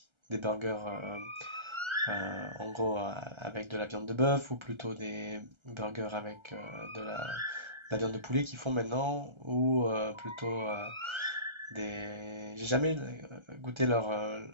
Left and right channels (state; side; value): late; left; 1.3 ms